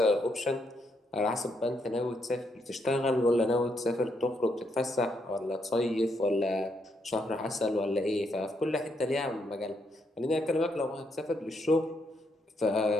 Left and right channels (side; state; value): both; normal; correlation 0.77